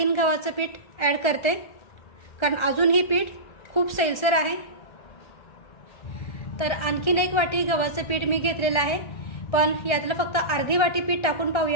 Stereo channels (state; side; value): late; right; 1.3 ms